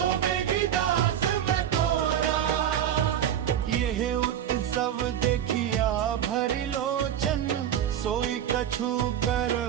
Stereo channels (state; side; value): quieter; left; 10.1 dB